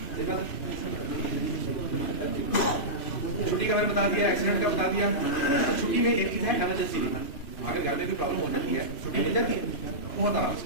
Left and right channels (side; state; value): right; late; 3.0 ms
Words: छुट्टी का मैंने बता दिया, एक्सीडेंट का बता दिया। छुट्टी में एक चीज है इमरजेंसी लीव, अगर घर में भी प्रॉब्लम हो जाती है छुट्टी मिल जाती है बहुत आराम से।